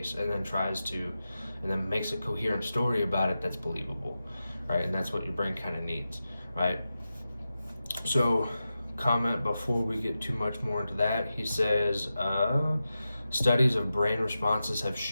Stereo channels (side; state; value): both; inverted; correlation -0.92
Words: and then makes a coherent story about it that's believable, right? And that's what your brain kind of needs, right? So comment before we get too much more into that. He says, studies of brain responses have